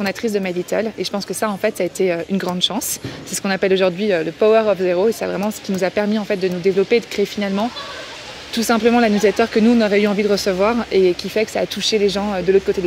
de My Little. Et je pense que ça, en fait, ça a été une grande chance. C'est ce qu'on appelle aujourd'hui le Power of Zero, et c'est vraiment ce qui nous a permis en fait de nous développer et de créer finalement tout simplement la newsletter que nous, on aurait eu envie de recevoir et qui fait que ça a touché les gens de l'autre côté de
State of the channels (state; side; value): identical; both; correlation 1.00